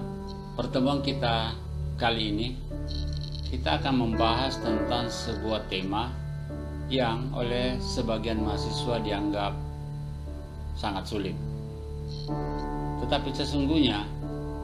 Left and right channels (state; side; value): identical; both; correlation 1.00